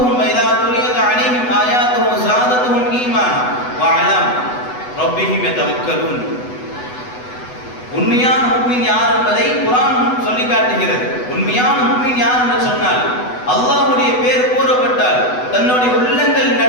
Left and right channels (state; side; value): late; right; 8.1 ms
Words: வ இதா துலியத் அலைஹிம் ஆயாத்துஹு ஸாதத்துஹும் ஈமான் வ அலா ரப்பிஹிம் யதவக்கலூன். உண்மையான முஃமின் யார் என்பதை குர்ஆன் சொல்லி காட்டுகிறது. உண்மையான முஃமின் யார் என்று சொன்னால், அல்லாஹ்வுடைய பேர் கூறப்பட்டால் தன்னுடைய உள்ளங்கள்